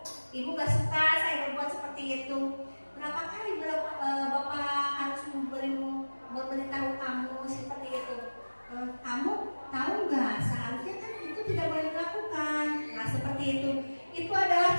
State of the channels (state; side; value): inverted; both; correlation -1.00